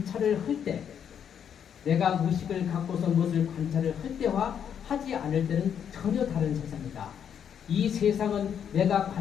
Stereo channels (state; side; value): quieter; right; 8.4 dB